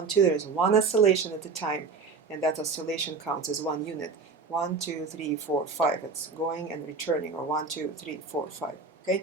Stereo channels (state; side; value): quieter; left; 4.7 dB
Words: 2. There's one oscillation at a time, and that oscillation counts as one unit. 1 2 3 4 5. It's going and returning, or 1 2 3 4 5. Okay.